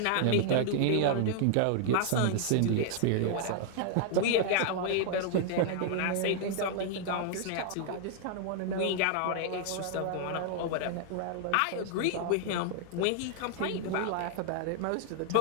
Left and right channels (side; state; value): both; different; correlation -0.01